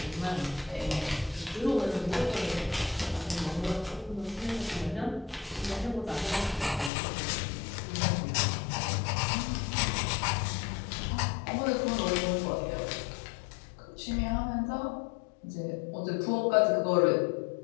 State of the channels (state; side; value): drops out; right; at 6.9 s